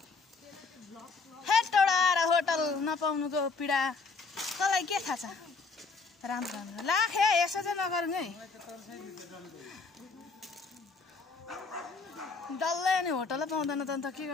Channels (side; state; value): right; quieter; 4.4 dB